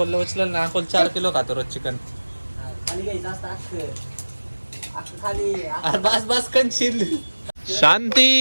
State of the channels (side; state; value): both; inverted; correlation -1.00